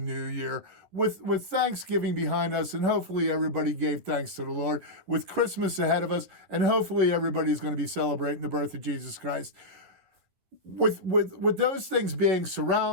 year with Thanksgiving behind us, and hopefully everybody gave thanks to the Lord, with Christmas ahead of us, and hopefully everybody's going to be celebrating the birth of Jesus Christ. With those things being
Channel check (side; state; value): left; late; 11 ms